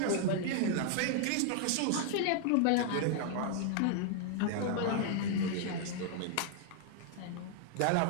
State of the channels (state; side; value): different; both; correlation 0.00